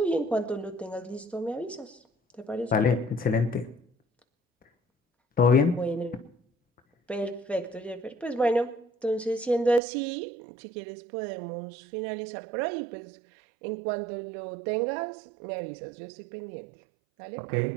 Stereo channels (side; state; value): left; drops out; at 9.8 s